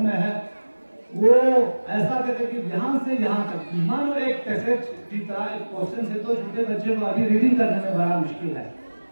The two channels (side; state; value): both; inverted; correlation -1.00